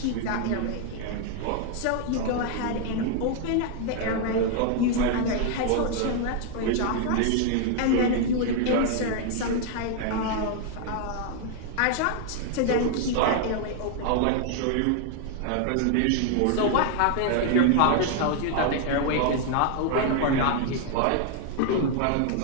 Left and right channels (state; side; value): different; both; correlation 0.00